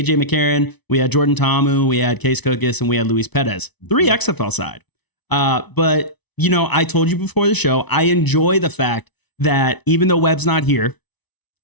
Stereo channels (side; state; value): right; late; 0.99 ms